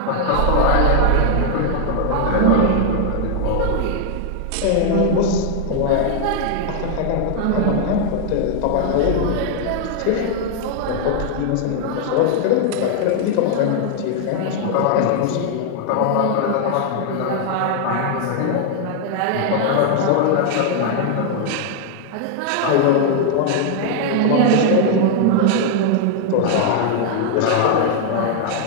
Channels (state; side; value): different; both; correlation 0.00